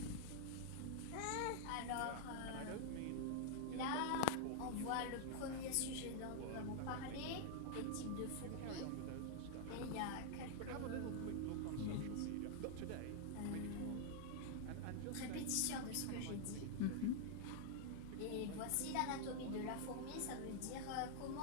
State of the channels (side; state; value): both; different; correlation -0.01